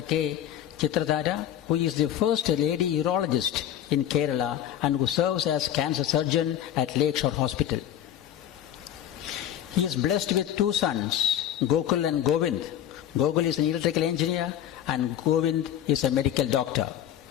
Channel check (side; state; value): right; quieter; 11.0 dB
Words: K. Chitradhara, who is the first lady urologist in Kerala and who serves as cancer surgeon at Lakeshore Hospital. He is blessed with two sons, Gokul and Govind. Gokul is an electrical engineer and Govind is a medical doctor.